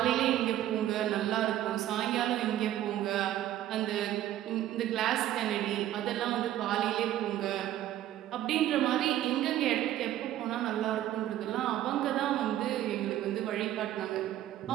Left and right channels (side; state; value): left; quieter; 12.8 dB